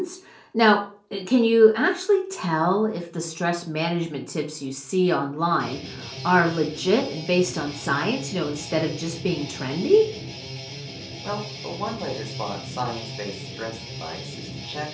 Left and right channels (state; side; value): identical; both; correlation 1.00